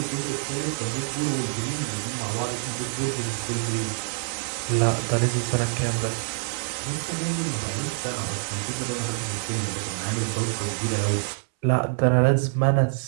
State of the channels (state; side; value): silent; left; 61 dB below the other